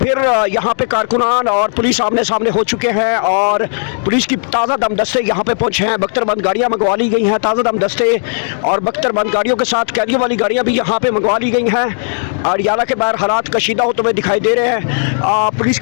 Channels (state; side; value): silent; right; 65 dB below the other